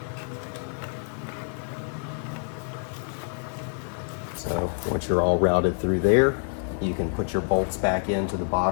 So once you're all routed through there, you can put your bolts back into the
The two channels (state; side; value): silent; right; 60 dB below the other